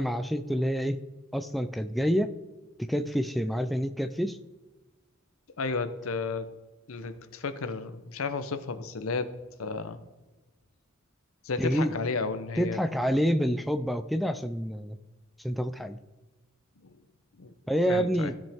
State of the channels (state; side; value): normal; both; correlation 0.71